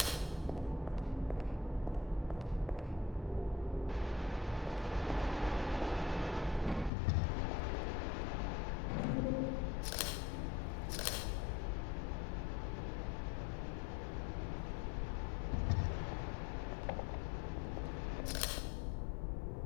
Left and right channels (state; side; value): drops out; right; at 6.9 s